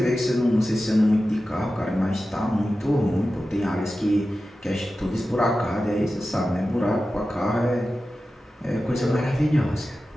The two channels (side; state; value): both; normal; correlation 0.94